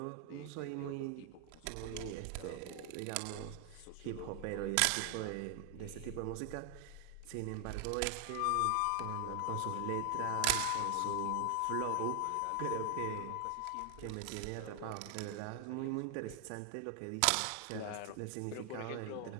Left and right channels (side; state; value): both; different; correlation 0.00